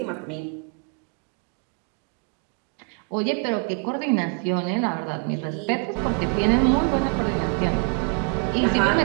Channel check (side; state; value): left; quieter; 34.9 dB